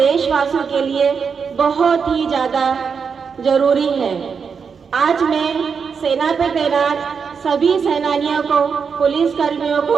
के लिए बहुत ही ज़्यादा जरूरी है। आज मैं सेना पे तैनात सभी सेनानियों को, पुलिस कर्मियों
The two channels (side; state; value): left; quieter; 6.0 dB